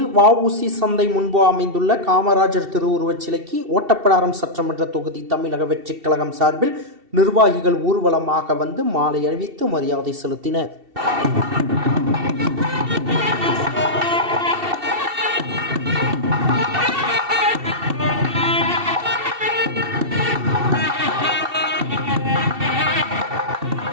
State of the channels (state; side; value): late; left; 2.7 ms